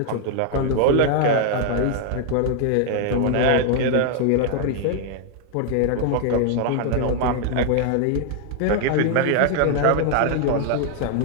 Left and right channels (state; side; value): different; both; correlation 0.00